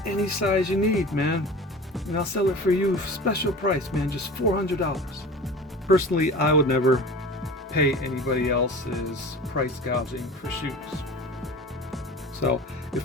any size you need, man. And I'll sell it for you special price, man, just $400. Personally, I would never pay anybody else's price gouging for shoes. So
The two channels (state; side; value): normal; both; correlation 0.37